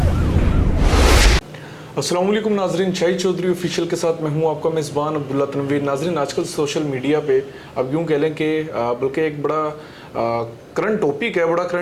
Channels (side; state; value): both; identical; correlation 1.00